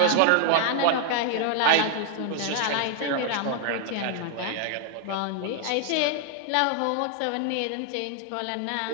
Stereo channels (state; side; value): different; both; correlation 0.00